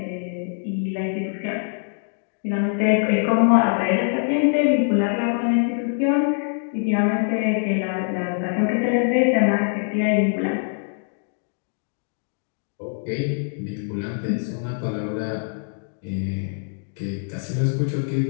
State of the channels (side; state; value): right; silent; digital silence